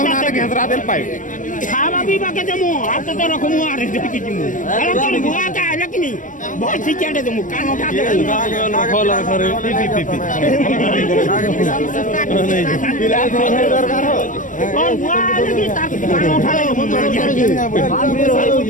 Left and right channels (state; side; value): late; right; 0.38 ms